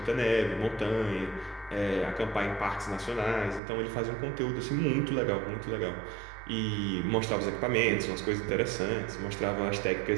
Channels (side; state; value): left; drops out; at 3.6 s